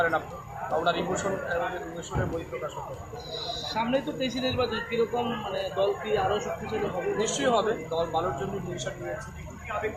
আপনি, ওনার ইমোশনের বহিঃপ্রকাশ হতে। সামনেই তো তেইশে নির্বাচন, কিরকম মানে দল কি আরও শক্তিশালী হবে? নিশ্চয়ই হবে, দল ভালোর জন্য ডিসিশন নিয়েছে,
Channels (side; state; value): both; identical; correlation 1.00